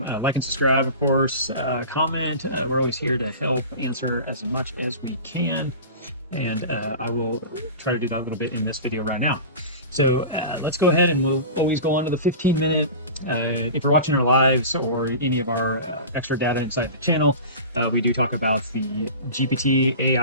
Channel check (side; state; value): both; inverted; correlation -0.34